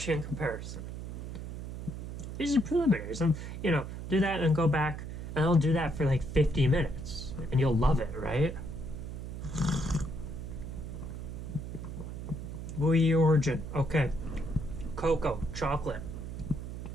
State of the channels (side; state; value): right; noise; hum, 7 dB below the sound